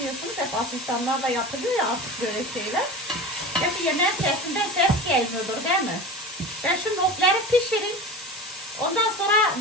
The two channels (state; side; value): normal; both; correlation 0.32